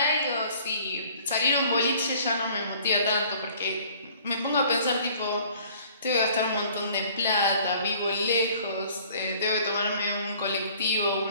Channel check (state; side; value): inverted; both; correlation -0.54